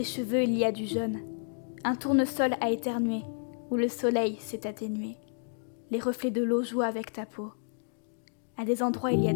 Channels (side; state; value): right; silent; digital silence